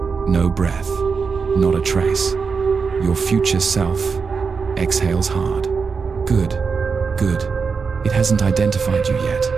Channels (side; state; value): left; quieter; 5.3 dB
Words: No breath. Not a trace. Your future self exhales hard. Good. Good. It hasn't identified you yet.